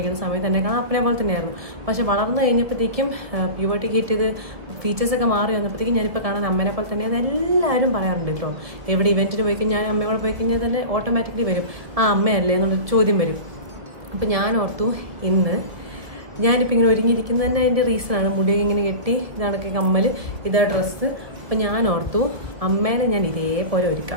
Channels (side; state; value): left; late; 1.9 ms